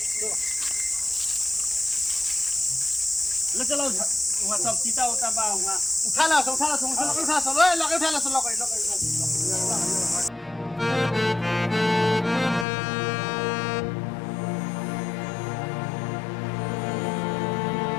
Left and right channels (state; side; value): drops out; right; at 12.7 s